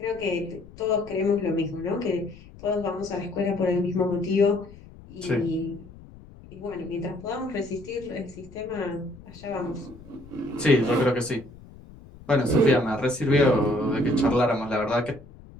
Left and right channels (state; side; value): noise; left; rumble, 20 dB below the sound